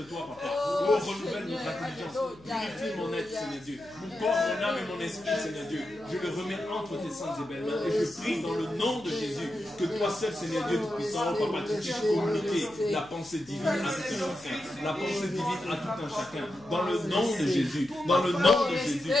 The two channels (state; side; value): noise; left; hum, 24 dB below the sound